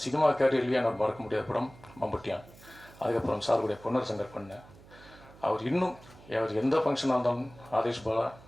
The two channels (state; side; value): noise; right; hum, 22 dB below the sound